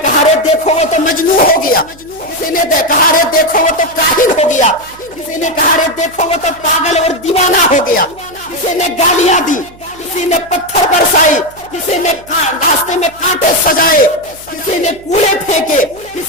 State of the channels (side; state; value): right; noise; hum, 24 dB below the sound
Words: کہا رے دیکھو وہ تو مجنون ہو گیا، کسی نے کہا رے دیکھو وہ تو کاہل ہو گیا، کسی نے کہا رے دیکھو وہ تو پاگل اور دیوانہ ہو گیا، کسی نے گالیاں دی، کسی نے پتھر برسائی، کسی نے راستے میں کانٹے سجائے، کسی نے کوڑے پھینکے،